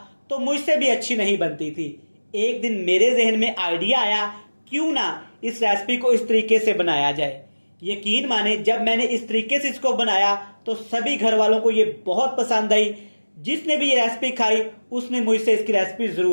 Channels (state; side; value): inverted; both; correlation -1.00